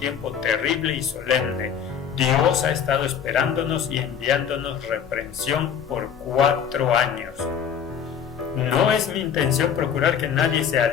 terrible y solemne. Dios ha estado esperándonos y enviándonos reprensión por 4 años. No es mi intención procurar que nadie se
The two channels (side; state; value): right; quieter; 7.9 dB